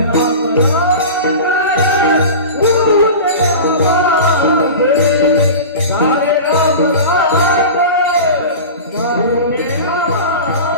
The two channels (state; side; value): inverted; both; correlation -0.31